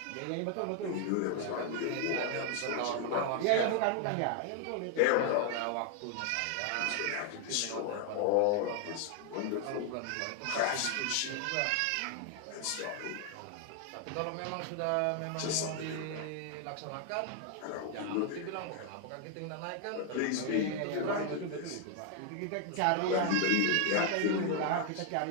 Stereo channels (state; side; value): different; both; correlation 0.00